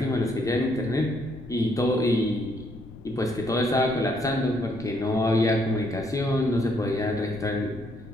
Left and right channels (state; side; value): noise; left; rumble, 17 dB below the sound